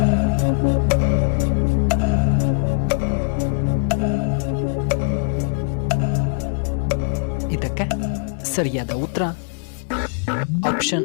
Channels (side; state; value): right; silent; digital silence